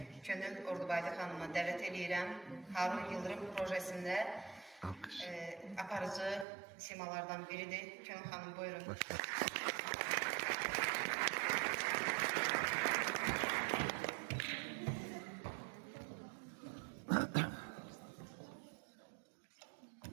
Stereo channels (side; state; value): left; drops out; at 6.5 s